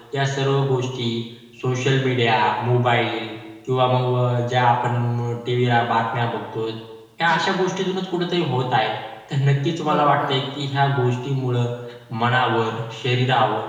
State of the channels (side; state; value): both; identical; correlation 1.00